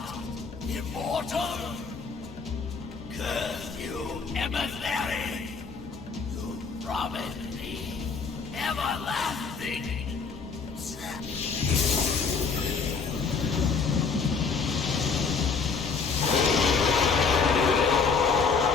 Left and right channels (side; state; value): right; quieter; 5.1 dB